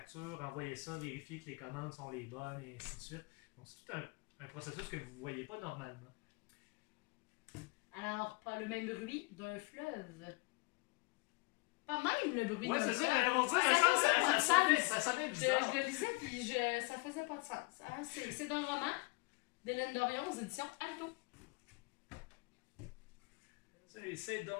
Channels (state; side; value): quieter; right; 26.0 dB